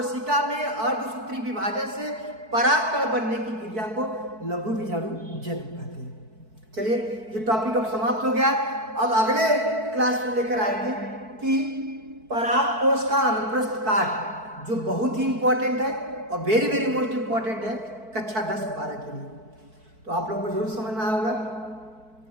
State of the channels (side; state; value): left; late; 4.6 ms